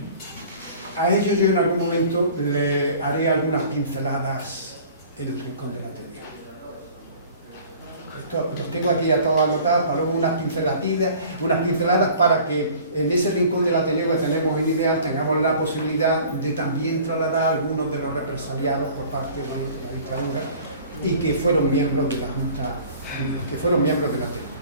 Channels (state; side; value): inverted; both; correlation -0.48